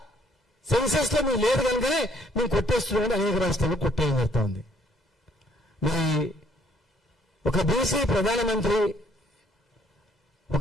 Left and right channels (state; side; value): normal; both; correlation 0.64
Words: సెన్సస్ లో మీరు లేదు కనుకనే మేము కొట్టేస్తున్నామని అనేక రాష్ట్రాల్లో కొట్టేయడం జరుగుతూ ఉంది. మరి ఒక బీసీ ప్రధానమంత్రి